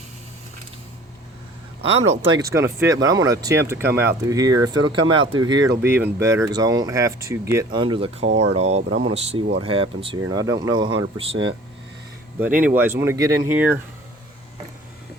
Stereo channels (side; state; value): both; normal; correlation 0.48